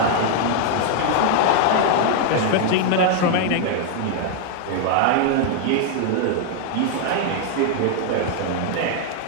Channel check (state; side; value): different; both; correlation 0.00